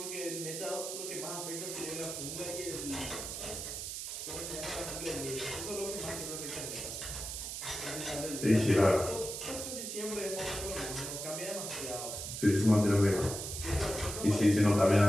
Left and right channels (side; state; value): right; noise; hiss, 6 dB below the sound